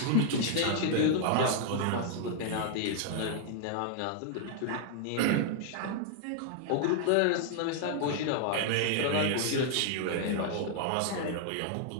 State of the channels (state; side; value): different; both; correlation -0.01